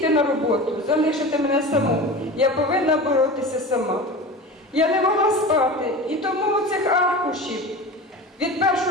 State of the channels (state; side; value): normal; both; correlation 0.32